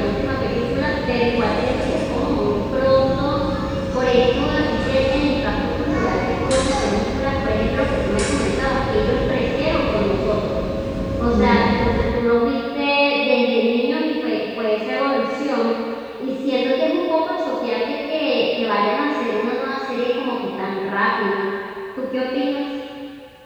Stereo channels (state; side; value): identical; both; correlation 1.00